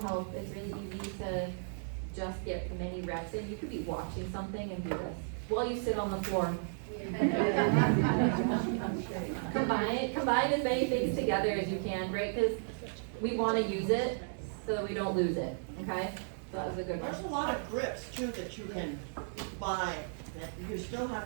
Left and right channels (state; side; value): silent; left; digital silence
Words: It's really easy to just get many reps in. You could be watching something and do this while you sit on the floor. Combine as many things together as you can, right? Because we want to use it so that we don't lose it, okay? So that was a good one. There's a lot of grips too that you can buy, that you still have